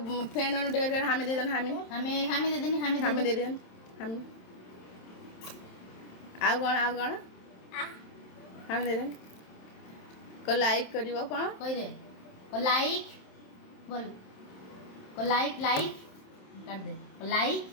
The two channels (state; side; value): late; right; 27 ms